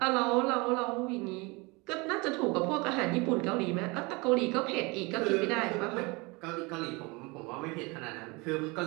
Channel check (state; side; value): quieter; left; 26.4 dB